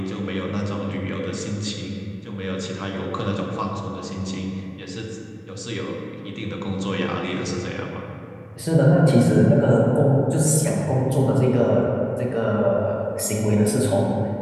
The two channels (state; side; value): identical; both; correlation 1.00